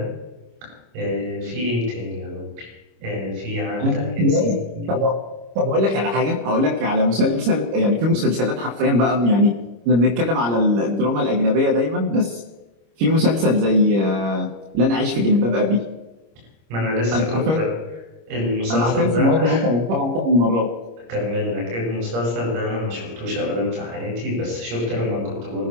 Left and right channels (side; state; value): left; late; 25 ms